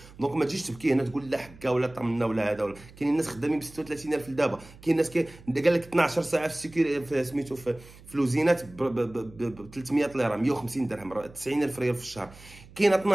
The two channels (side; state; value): right; noise; hum, 21 dB below the sound